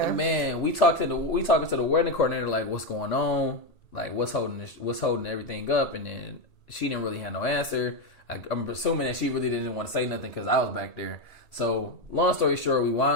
And man, we talking to the wedding coordinator, like, what's going on? Like, what's holding everything up? And then she didn't really have no answer. I'm assuming that she really didn't want to say nothing because I was back there. So, long story short, we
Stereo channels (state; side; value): late; right; 1.8 ms